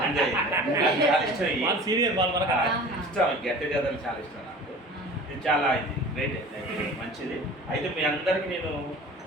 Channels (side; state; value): both; normal; correlation 0.41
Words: సీనియర్ వాళ్ళు ఇష్టం. గెట్ టుగెదర్ చాలా ఇష్టం నాకు. ఇది చాలా ఇది గ్రేట్, మంచిది. అయితే మీ అందరికీ నేను